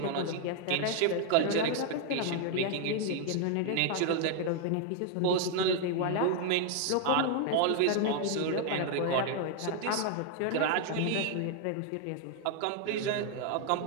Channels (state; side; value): different; both; correlation 0.00